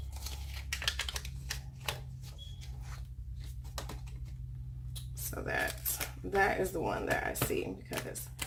So that is the one that I see because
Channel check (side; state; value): both; identical; correlation 1.00